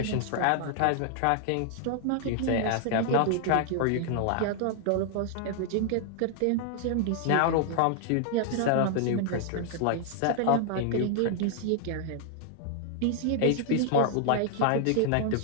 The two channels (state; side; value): different; both; correlation 0.00